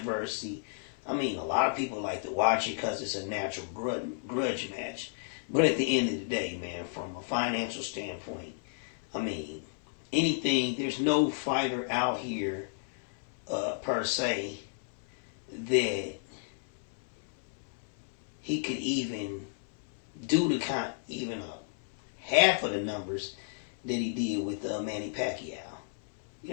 A lot of people like to watch it because it's a natural grudge match. But at the end of the day, man, from a financial standpoint, there's no fighter out here, per se, that he could even do even half of the numbers that he did with Manny Pacquiao. You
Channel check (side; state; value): right; silent; 56 dB below the other